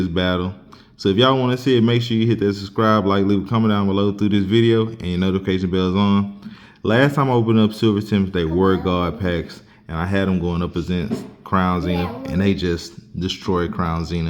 battle. So if y'all want to see it, make sure you hit that subscribe, like, leave a comment down below through this video, and your notification bell's on. Last time I opened up Silver Tempest, they were God packs, and I had them going up against Crown Zenith, and they just destroyed Crown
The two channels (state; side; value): identical; both; correlation 1.00